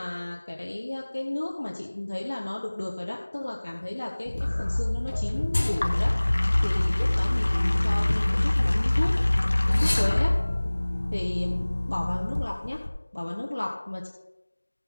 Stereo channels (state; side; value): inverted; both; correlation -1.00